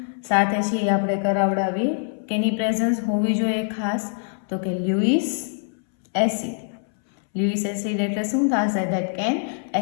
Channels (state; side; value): silent; right; 63 dB below the other